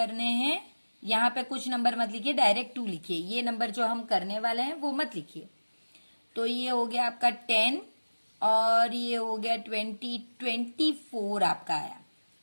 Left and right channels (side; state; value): both; inverted; correlation -1.00